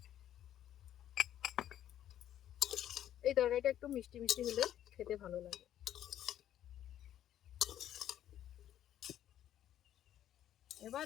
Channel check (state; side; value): quieter; right; 11.4 dB